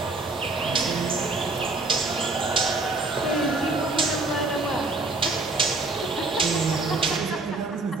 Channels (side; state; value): left; quieter; 3.2 dB